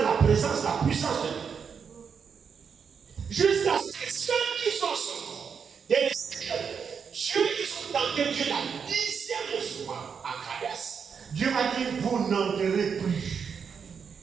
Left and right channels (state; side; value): quieter; left; 6.5 dB